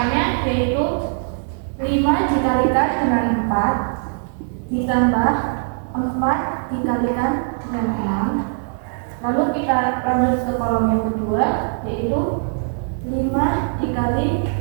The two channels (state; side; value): silent; left; 65 dB below the other